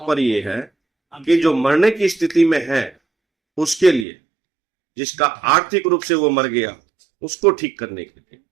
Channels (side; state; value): left; drops out; at 4.0 s